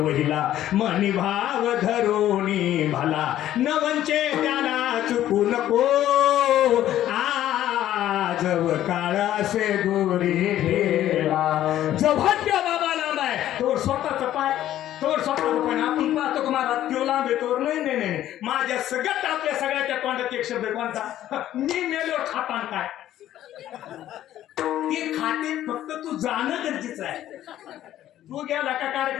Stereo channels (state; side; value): quieter; right; 12.6 dB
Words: मनी भाव धरोनी भला. नवंचे त्याला चुकू नको. जब काळ असे दोरी ठेला. जेव्हा त्या बाबा लांब आहे तोवर स्वतःचा पाय, तोवर स्वतःचा पाय. आपण पाहतो की महाराज तो लांब आहे तोवर नाही नाही नाही. माझ्या सगळ्यात आपल्या सगळ्याच्या तोंडात एक शब्द कोणता. मी मेलो खातान काय. ते खाते फक्त तू जाणं गरजेचं आहे. तू गेला का